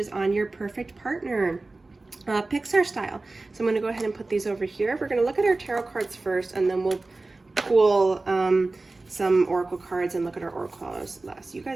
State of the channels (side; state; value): left; quieter; 3.3 dB